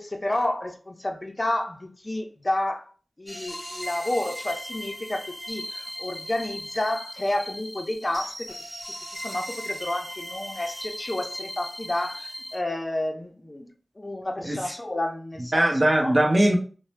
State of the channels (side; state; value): both; normal; correlation 0.97